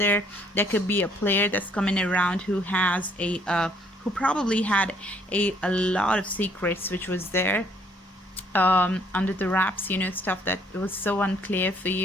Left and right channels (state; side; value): normal; both; correlation 0.65